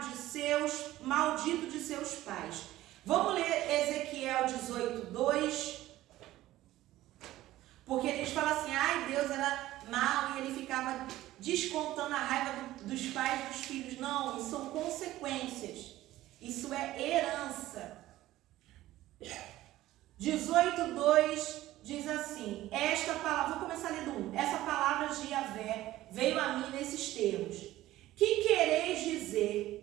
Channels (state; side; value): quieter; left; 15.5 dB